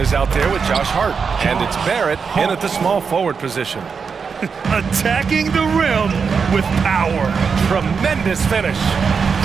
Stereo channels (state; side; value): quieter; left; 5.7 dB